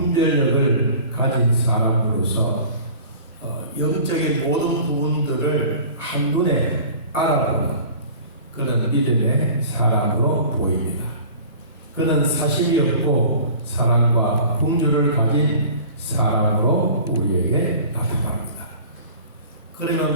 가진 사람으로서 영적인 모든 부분들을 한눈에 알아보는 그런 믿음의 사람으로 보입니다. 그는 사심이 없고 사랑과 긍휼을 가진 사람으로 우리에게 나타납니다.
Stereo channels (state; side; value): inverted; both; correlation -0.43